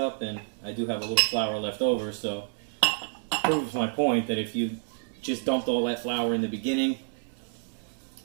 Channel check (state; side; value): silent; left; digital silence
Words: and I do have a little flour left over, so it proves my point that if you just dumped all that flour in the beginning,